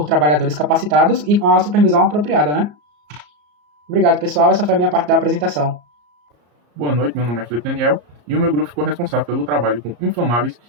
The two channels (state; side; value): late; left; 34 ms